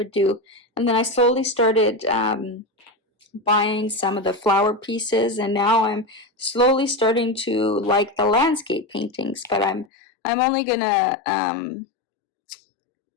do, and then I slowly started buying some of the flower pieces, and now I'm slowly starting to like the landscape paintings, but I'm only gonna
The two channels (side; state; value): right; drops out; at 9.9 s